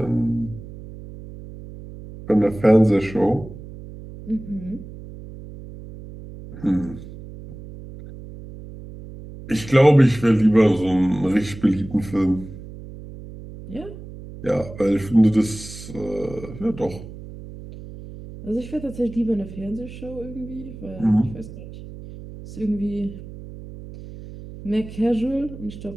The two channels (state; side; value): noise; right; hum, 14 dB below the sound